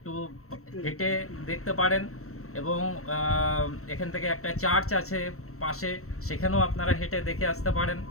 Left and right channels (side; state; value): right; late; 0.64 ms